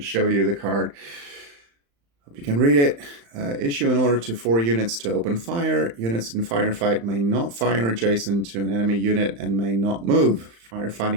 you the card. Hope you can read it. Issue an order to 4 units to open fire. Units in Firefight may not fire adjacent to an enemy unit and may not move.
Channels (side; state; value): left; late; 35 ms